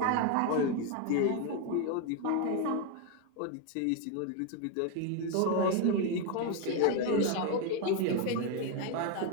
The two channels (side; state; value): both; different; correlation 0.01